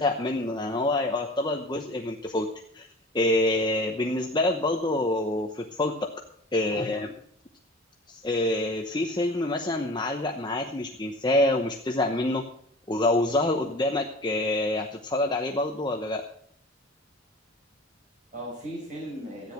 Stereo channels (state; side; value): normal; both; correlation 0.39